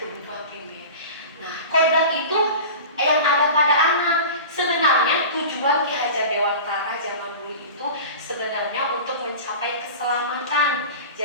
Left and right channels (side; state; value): both; inverted; correlation -0.35